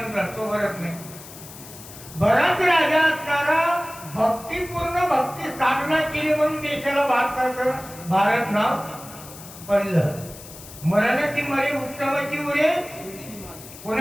तो भरत नाही. भरत राजा असणारा भक्तीपूर्ण भक्ती स्थापना केली म्हणून देशाला भारत नाव पडलं. मरणाची मरे उत्तमाची उरे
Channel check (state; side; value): noise; left; hiss, 16 dB below the sound